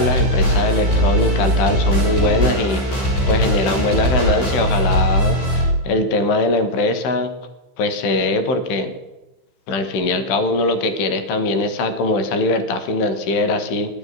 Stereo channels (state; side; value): late; right; 15 ms